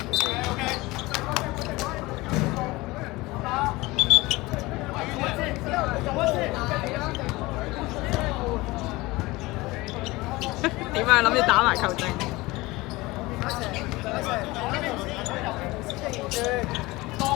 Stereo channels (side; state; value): right; quieter; 21.1 dB